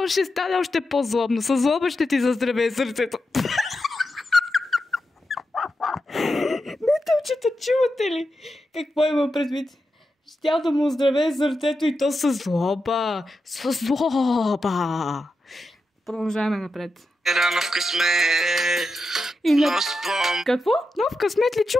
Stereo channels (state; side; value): normal; both; correlation 0.89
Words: ще стане още по-злобно. Със злоба ще ти заздравее сърцето. Метълчета, чувате ли? Какво има предвид? Щял да му оздравее сърцето и то със злоба. Със злоба. Продължаваме напред. Рано в късмет. Какво? Нов късмет ли